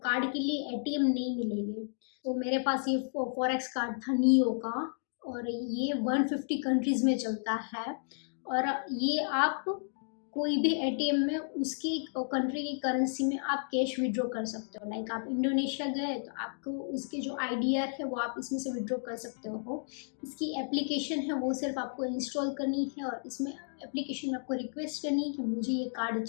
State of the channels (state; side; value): silent; right; digital silence